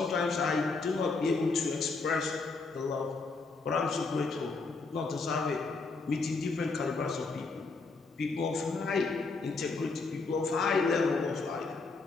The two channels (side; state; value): right; quieter; 4.0 dB